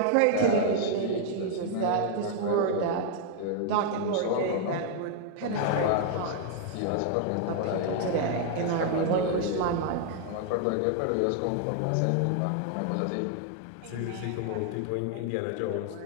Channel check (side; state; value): both; different; correlation 0.00